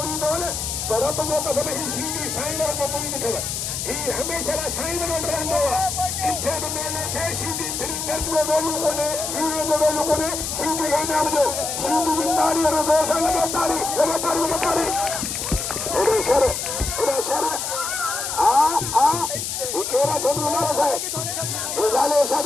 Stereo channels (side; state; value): left; noise; hiss, 3 dB below the sound